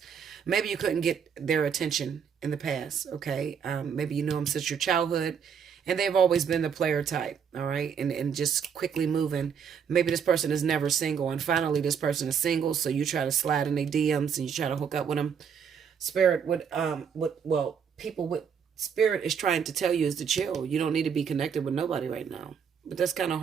Maybe you couldn't get their attention in the past. Okay? Maybe you know them since your childhood. And they've always been the player type, all right? And just quickly moving. Maybe this person is never single, and finally this person is single, so you try to slide in their DMs and you try to hook up with them. Spirit would, people with spirit is trying to tell you is to chill. You don't need to be connected with nobody right now. But that's kind of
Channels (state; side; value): quieter; left; 7.2 dB